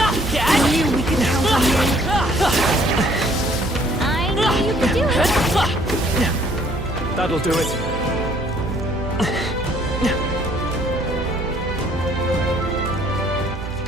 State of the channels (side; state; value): right; noise; hum, 7 dB below the sound